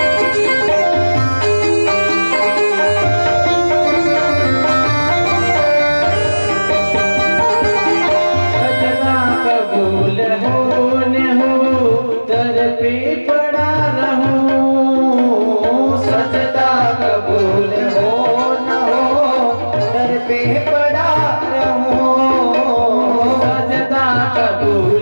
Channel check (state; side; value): inverted; both; correlation -1.00